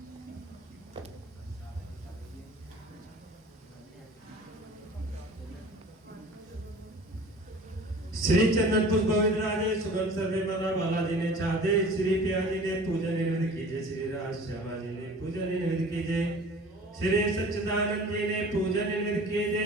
श्री चंदन पुष्प गोविंद राजे सुगम सर्वे मना बालाजी ने चाहते, श्री पिया जी ने पूजन निवेदित कीजिए, श्री राज श्यामा जी ने पूजन निवेदित कीजिए, श्री सच्चिदानंद जी ने पूजन निवेदित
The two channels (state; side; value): normal; both; correlation 0.44